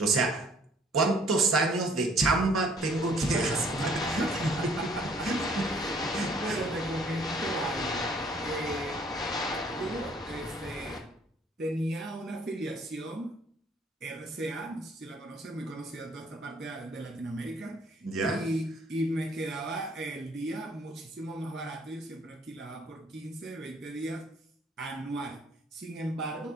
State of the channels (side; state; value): both; normal; correlation 0.59